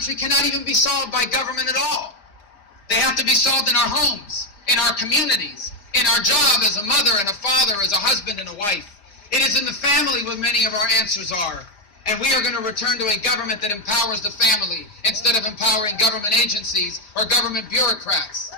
cannot even be solved by government at all. They have to be solved in our homes, in our communities, in our job as a mother and a father, as a husband and a wife. It is in the family where many of our answers are. And we are going to return to a government that empowers the family instead of empowering government agencies or government bureaucrats.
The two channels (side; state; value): right; late; 5.0 ms